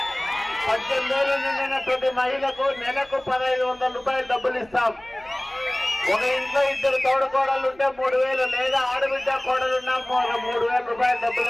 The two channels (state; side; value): noise; right; hum, 28 dB below the sound